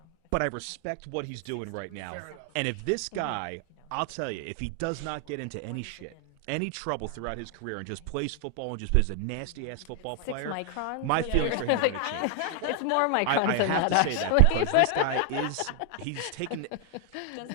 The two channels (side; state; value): both; different; correlation 0.00